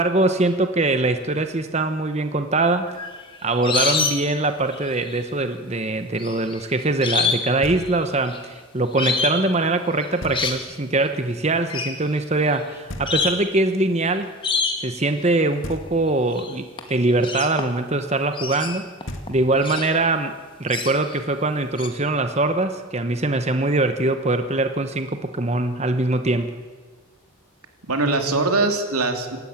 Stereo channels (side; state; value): both; normal; correlation 0.33